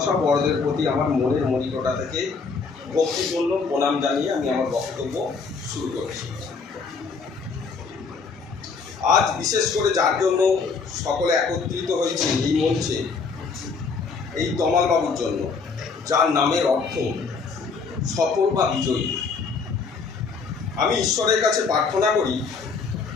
বড়দের প্রতি আমার মনের মনিকটা থেকে ভক্তিপূর্ণ প্রণাম জানিয়ে আমি আমার বক্তব্য শুরু করেছি। আজ বিশেষ করে যার জন্য সকলে একত্রিত হয়েছে এই মঞ্চে, এই তমাল বাবুর জন্য, যার নামের অর্থ সফল বা বিজয়ী। আমি ঈশ্বরের কাছে প্রার্থনা করি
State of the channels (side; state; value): right; quieter; 4.9 dB